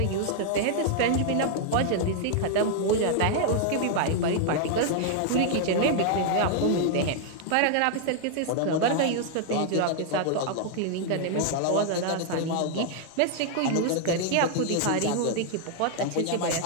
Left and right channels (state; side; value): different; both; correlation 0.00